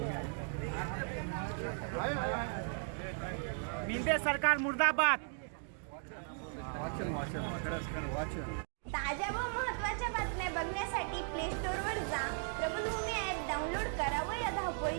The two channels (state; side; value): silent; left; 53 dB below the other